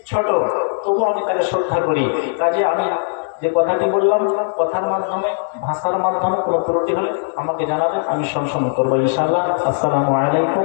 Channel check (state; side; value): silent; right; digital silence